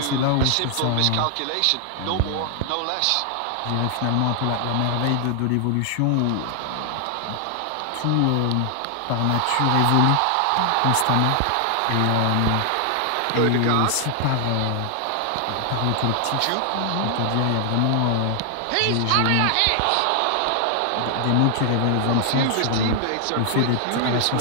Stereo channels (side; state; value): both; different; correlation 0.00